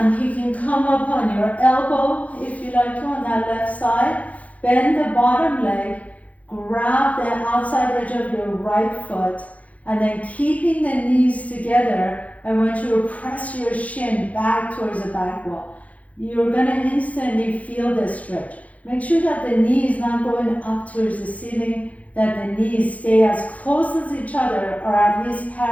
You can come up on your elbow if you like to on that left side. Bend the bottom leg, grab the outside edge of your right foot, and then keeping the knees together. I want you to press your shin back towards the back wall. You're going to instantly feel the stretch. Make sure that the knee is not going up towards the ceiling, that the knees stay as close as each other or at least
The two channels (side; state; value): right; late; 0.068 ms